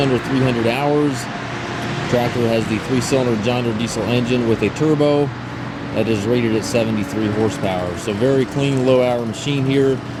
300 hours. The tractor has the 3-cylinder John Deere diesel engine with a turbo that is rated at 73 horsepower. So very clean, low-hour machine here.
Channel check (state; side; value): identical; both; correlation 1.00